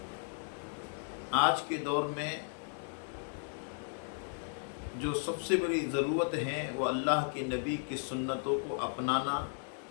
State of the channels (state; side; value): silent; right; 54 dB below the other